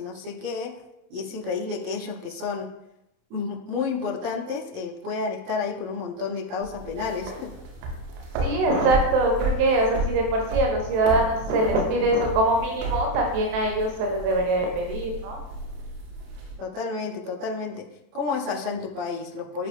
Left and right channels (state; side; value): late; left; 27 ms